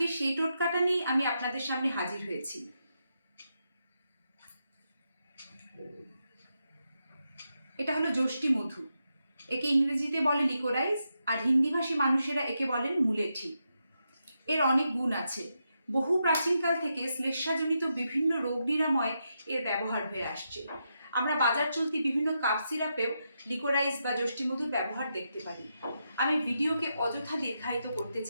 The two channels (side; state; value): both; inverted; correlation -0.84